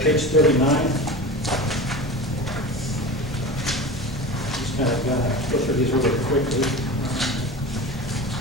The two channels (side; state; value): both; normal; correlation 0.31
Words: 39. Just kind of go through these really quickly.